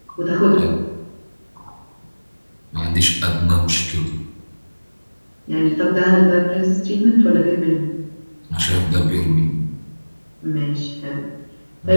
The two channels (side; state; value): both; inverted; correlation -1.00